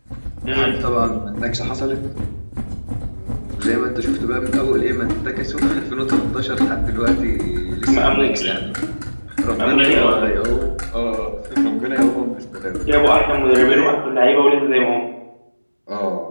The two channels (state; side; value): inverted; both; correlation -1.00